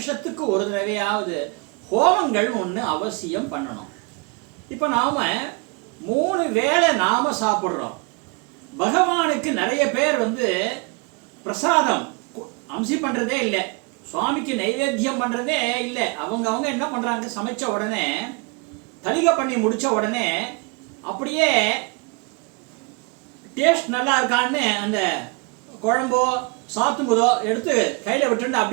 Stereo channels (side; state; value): left; quieter; 31.2 dB